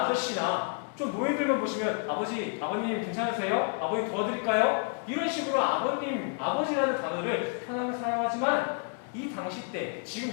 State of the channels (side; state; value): right; quieter; 37.4 dB